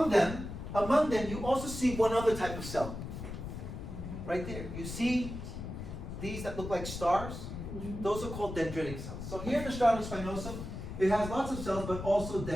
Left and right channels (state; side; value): noise; left; rumble, 8 dB below the sound